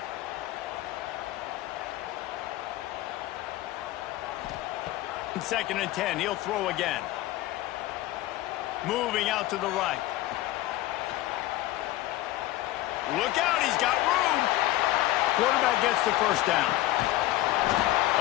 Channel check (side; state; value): right; quieter; 16.0 dB